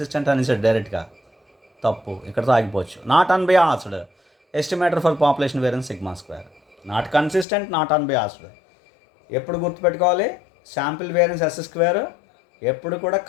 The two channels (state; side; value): drops out; right; at 7.5 s